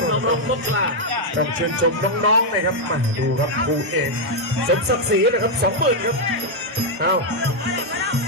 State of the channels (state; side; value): normal; both; correlation -0.01